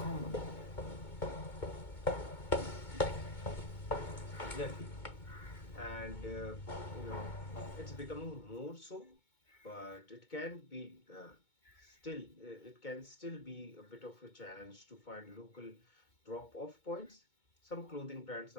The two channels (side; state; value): right; late; 2.2 ms